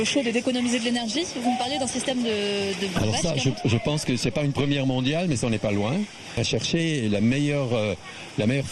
chaude et d'économiser de l'énergie, vous me parliez d'un système de Alors ça, je pense que c'est pas une première mondiale, mais ça n'est pas loin. À chercher la meilleure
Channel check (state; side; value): identical; both; correlation 1.00